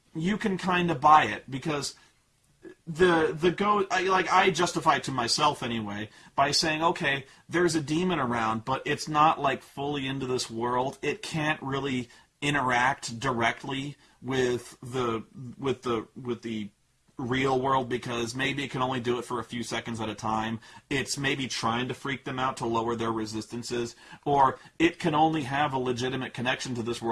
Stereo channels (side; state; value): both; identical; correlation 1.00